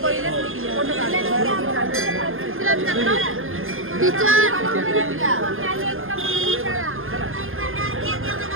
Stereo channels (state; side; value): late; left; 0.59 ms